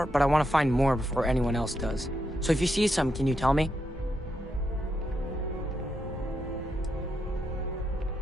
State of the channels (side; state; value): both; normal; correlation 0.82